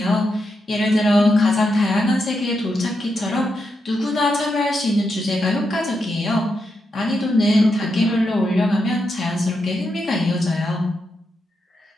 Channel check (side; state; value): both; normal; correlation 0.84